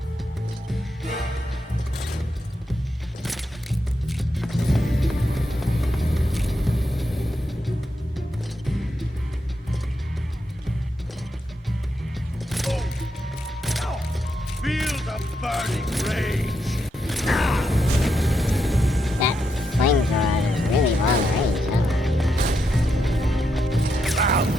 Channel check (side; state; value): both; normal; correlation 0.82